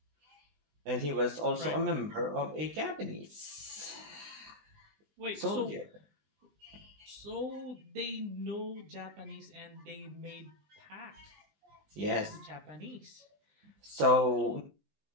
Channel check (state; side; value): late; left; 20 ms